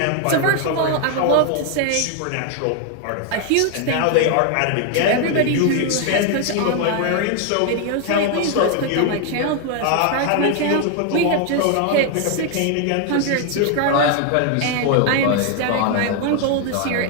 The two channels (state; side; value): different; both; correlation 0.01